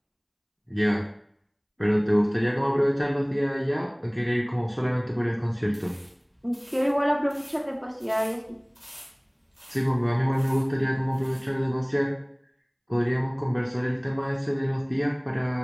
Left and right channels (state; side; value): identical; both; correlation 1.00